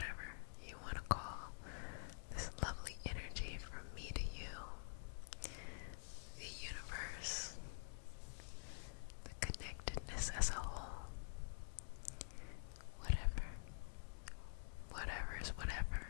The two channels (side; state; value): right; silent; digital silence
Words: you want to call this lovely energy from me to you, the universe, the connectedness as a whole, whatever, whatever is whatever,